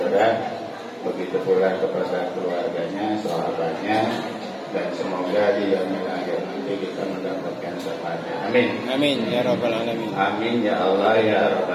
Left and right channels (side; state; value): both; identical; correlation 1.00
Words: Begitu pula kepada keluarganya, sahabatnya, dan semoga di yaumil akhir nanti kita mendapatkan syafaatnya. Amin. amin ya rabbal alamin. Amin ya Allah ya